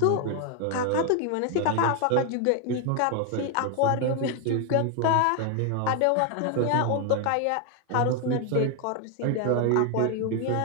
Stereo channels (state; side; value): different; both; correlation 0.01